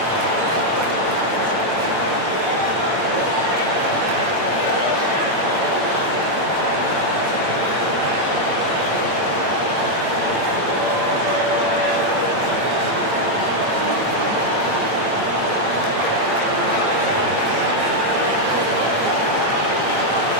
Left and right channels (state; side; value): late; left; 8.8 ms